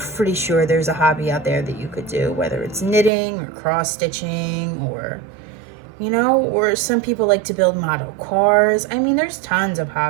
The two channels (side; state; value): left; drops out; at 3.1 s